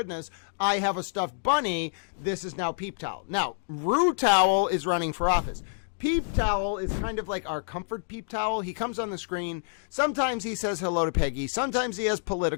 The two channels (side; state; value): right; silent; digital silence